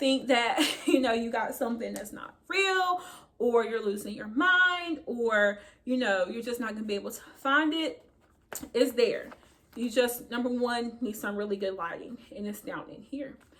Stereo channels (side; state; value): both; identical; correlation 1.00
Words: that, you know, you got something that's not real, or you're losing your mind, or, you know, you're just not gonna be able to find it. It's there. You just, number one, need some really good lighting, and it's down in here.